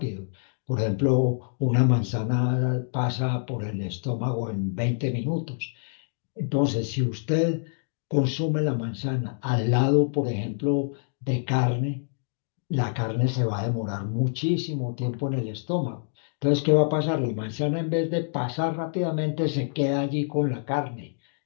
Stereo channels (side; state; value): right; silent; digital silence